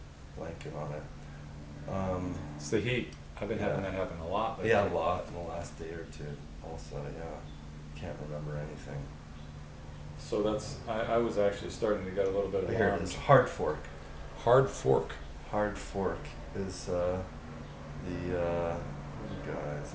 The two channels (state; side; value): identical; both; correlation 1.00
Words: blanking on it? It's the heat. I've been having that happen a lot. Yeah, a lot in the last day or two also, yeah. Can't remember anything. So I was actually starting to get a little bit of Here it is, Hard Fork. Hard Fork. Hard Fork is the guys